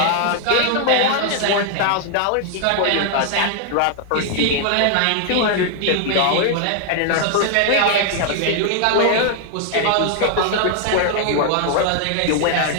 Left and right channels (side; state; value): both; different; correlation 0.00